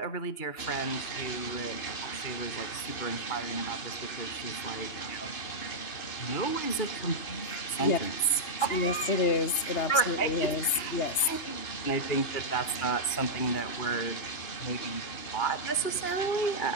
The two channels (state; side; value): late; right; 2.9 ms